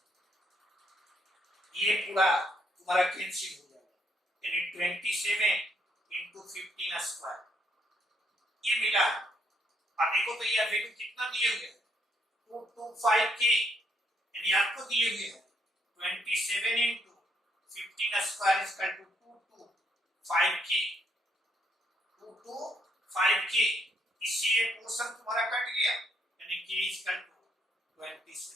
ये पूरा तुम्हारा कैंसिल हो जाएगा, यानी 27 इंटू 15 स्क्वायर ये मिला। अब देखो तो ये वैल्यू कितना दिए हुए हैं? 225 के, यानी आपको दिए हुए हैं 27 into 15 square is equal to 225 के, 225 के, इससे ये पोर्शन तुम्हारा कट गया, यानी k is equal to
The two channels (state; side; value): normal; both; correlation 0.73